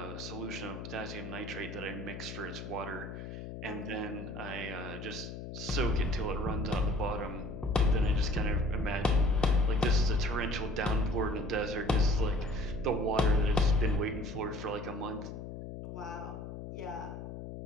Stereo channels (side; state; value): left; noise; hum, 9 dB below the sound